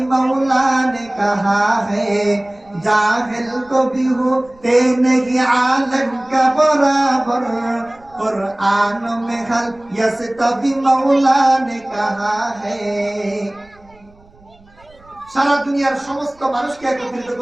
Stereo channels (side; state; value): right; noise; rumble, 29 dB below the sound